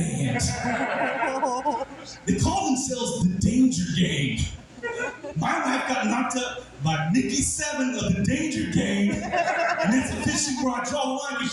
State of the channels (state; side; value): identical; both; correlation 1.00